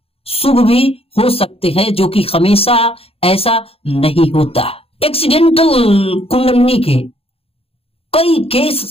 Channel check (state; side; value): late; right; 0.28 ms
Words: शुभ भी हो सकते हैं, जो कि हमेशा ऐसा नहीं होता। एक्सीडेंटल कुंडलिनी के कई केस